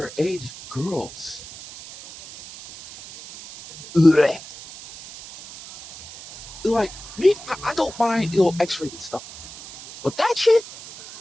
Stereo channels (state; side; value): noise; right; hiss, 16 dB below the sound